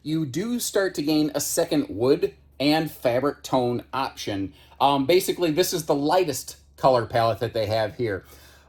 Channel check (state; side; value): identical; both; correlation 1.00